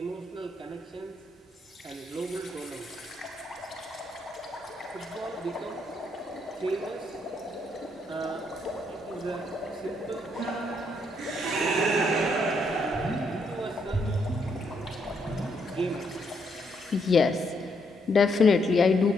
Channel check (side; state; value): both; normal; correlation 0.75